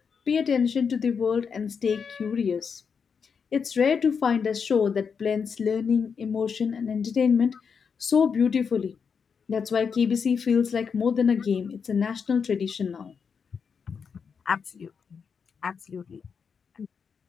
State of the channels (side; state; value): right; quieter; 6.2 dB